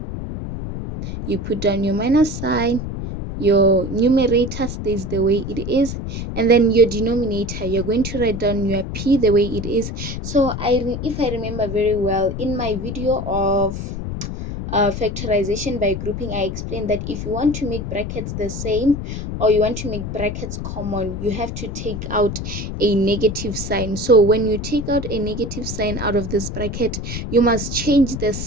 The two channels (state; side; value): noise; left; rumble, 6 dB below the sound